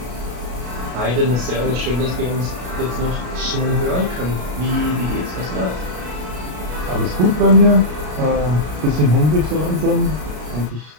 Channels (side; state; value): left; late; 33 ms